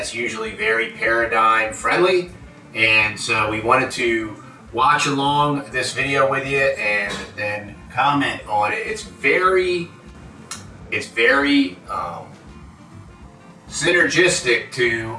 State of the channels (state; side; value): identical; both; correlation 1.00